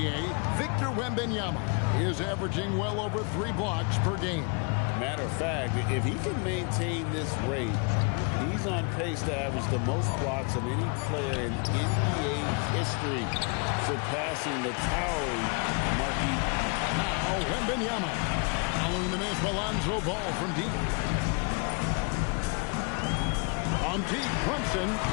Victor Wembanyama is averaging well over 3 blocks per game. Matter of fact, if he can maintain this rate, he's on pace to average the most blocks of any player in NBA history, surpassing the towering Marquis. Now, Wembanyama. Following the miss, Alonzo Ball from deep. On deep, Brunson.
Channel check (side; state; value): right; quieter; 34.4 dB